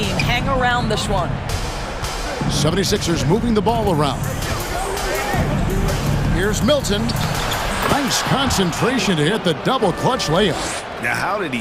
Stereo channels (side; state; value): both; identical; correlation 1.00